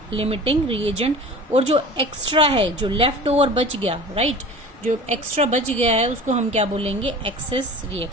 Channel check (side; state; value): both; normal; correlation 0.39